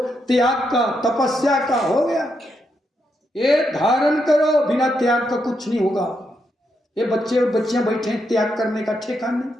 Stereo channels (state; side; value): normal; both; correlation 0.81